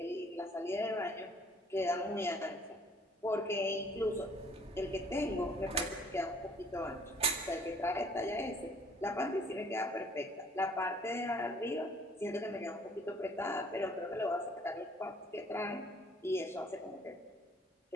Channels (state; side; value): normal; both; correlation 0.58